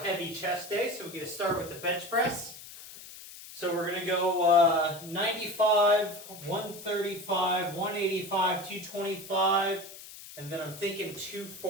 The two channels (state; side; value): noise; left; hiss, 15 dB below the sound